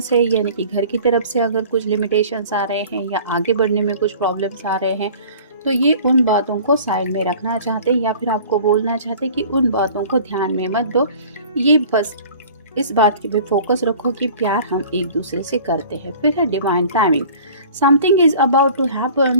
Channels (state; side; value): inverted; both; correlation -0.46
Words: है यानी कि घर की तरफ से अगर कुछ लिमिटेशंस आ रहे हैं या आगे बढ़ने में कुछ प्रॉब्लम्स आ रहे हैं, तो ये उन बातों को साइड में रखना चाहते हैं या फिर आपको बोलना चाहते हैं कि उन बातों को ध्यान में मत दो। ये बस इस बात की पे फोकस रखो कि प्यार हम एक दूसरे से करते हैं। फिर है divine timing, something is about to